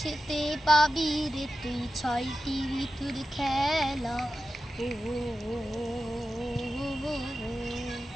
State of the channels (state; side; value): normal; both; correlation 0.93